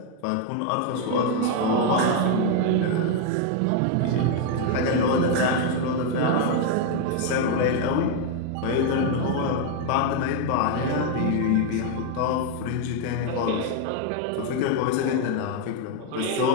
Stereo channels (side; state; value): both; different; correlation 0.01